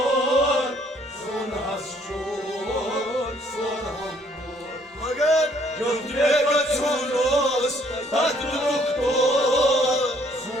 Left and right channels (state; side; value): normal; both; correlation 0.64